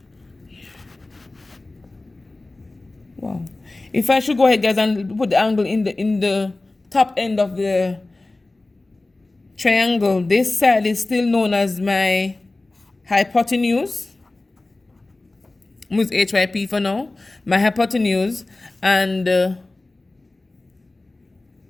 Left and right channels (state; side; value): quieter; right; 3.0 dB